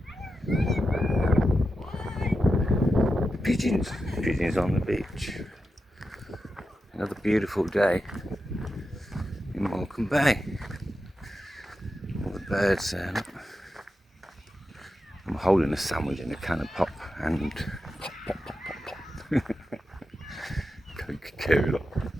there. Pigeons. Pigeons on the beach. Another beautiful day in Morecambe Bay. All the birds there. Look. I'm holding a sandwich in a can of pop and pop, pop, pop, pop, pop. Coca-Cola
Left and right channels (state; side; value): normal; both; correlation 0.89